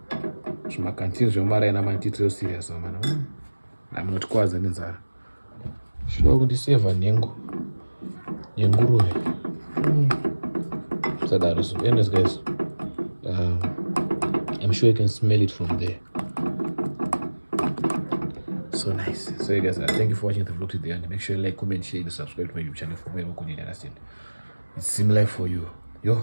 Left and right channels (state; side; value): inverted; both; correlation -1.00